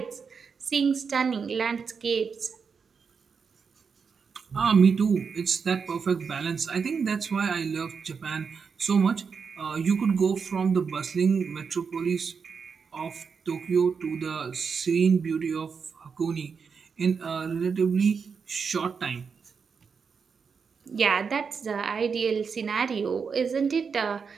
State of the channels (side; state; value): left; quieter; 5.8 dB